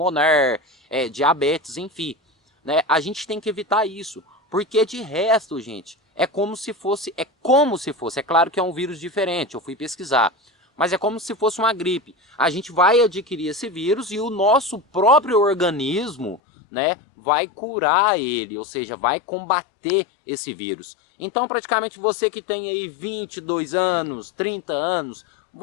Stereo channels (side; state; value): right; drops out; at 16.4 s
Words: diabetes, enfim. Né? A gente tem que evitar isso, porque de resto, gente, é como se fosse, é claro que é um vírus diferente, eu fui pesquisar, mas é como se fosse uma gripe. A gente vai adquirir esse vírus e o nosso próprio organismo, né, vai curar ele, ou seja, vai combater esse vírus. Então praticamente você que tem aí 22 anos, 30 anos,